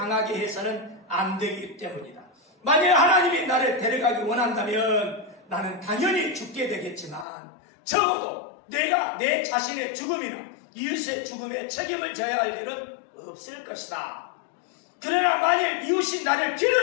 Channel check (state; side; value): drops out; right; at 7.2 s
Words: 해서는 안 되기 때문이다. 만약 하나님이 나를 데려가기 원한다면 나는 당연히 죽게 되겠지만 적어도 내가 내 자신의 죽음이나 이웃의 죽음에 책임을 져야 할 일은 없을 것이다. 그러나 만일 이웃이 나를